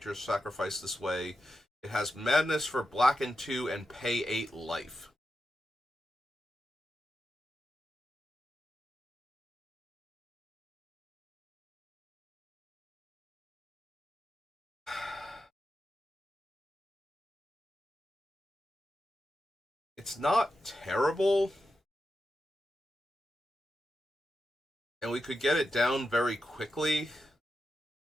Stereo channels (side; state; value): both; normal; correlation 0.89